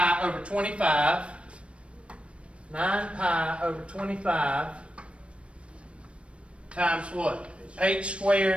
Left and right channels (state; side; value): late; left; 0.060 ms